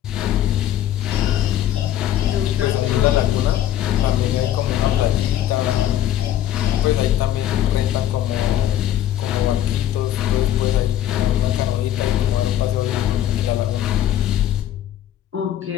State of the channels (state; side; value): quieter; right; 11.8 dB